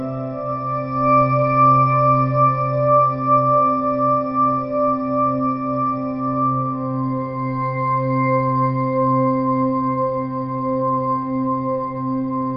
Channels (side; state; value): right; noise; rumble, 25 dB below the sound